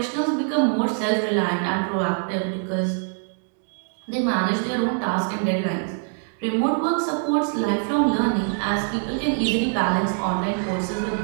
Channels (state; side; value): silent; left; 62 dB below the other